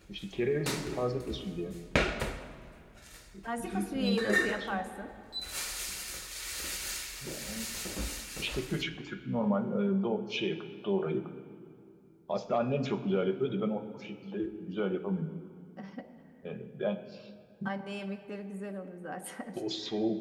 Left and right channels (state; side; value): identical; both; correlation 1.00